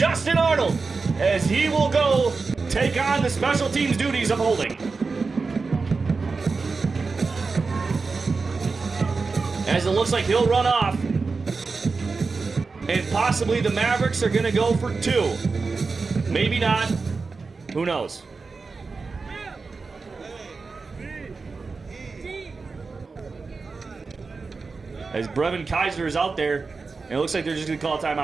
Arnold. as he will go take on the special teams duties of holding. As it looks like he'll run off. And possibly the Mavericks are going to go for 2. Maybe not. Who knows? As Brevin Kaiser is out there, and it looks like they're just going to call a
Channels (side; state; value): left; quieter; 4.3 dB